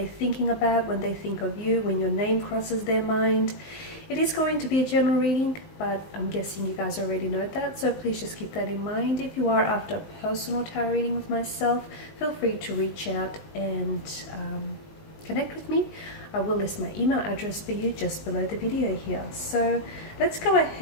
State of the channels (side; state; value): right; late; 19 ms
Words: thinking about when they think of you, when your name crosses their mind? It is going to be a general reading, but I'm guessing you guys already know that, so please just keep that in mind. If you are after a personal tarot reading with myself, feel free to reach out and connect with me. I will list my email address for you just below the video here. So let's go